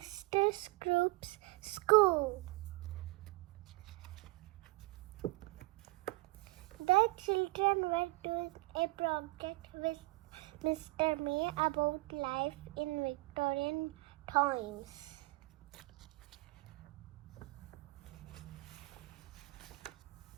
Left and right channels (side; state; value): left; quieter; 23.4 dB